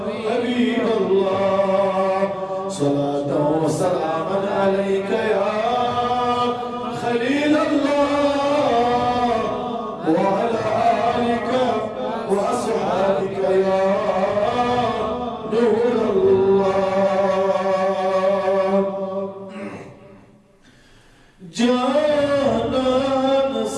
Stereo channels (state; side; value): identical; both; correlation 1.00